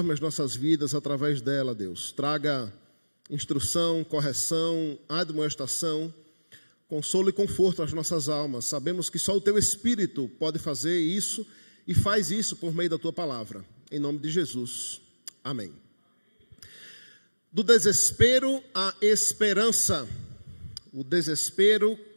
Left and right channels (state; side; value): inverted; both; correlation -1.00